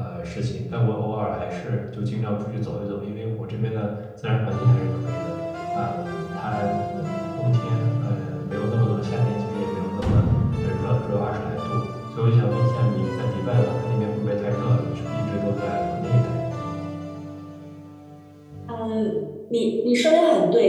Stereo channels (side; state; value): both; identical; correlation 1.00